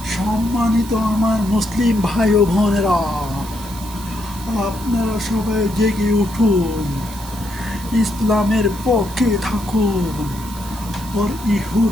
সম্মানিত আমার মুসলিম ভাই ও বোনেরা, আপনারা সবাই জেগে উঠুন, ইসলামের পক্ষে থাকুন, ওর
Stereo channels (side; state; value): right; noise; hiss, 15 dB below the sound